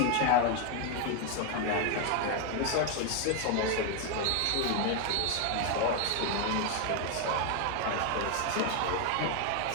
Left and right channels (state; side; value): different; both; correlation 0.01